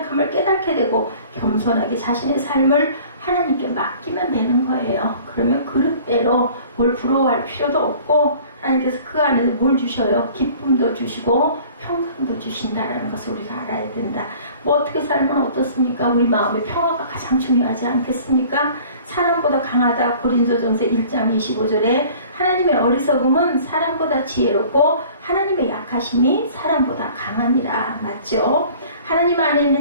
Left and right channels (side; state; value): both; inverted; correlation -0.49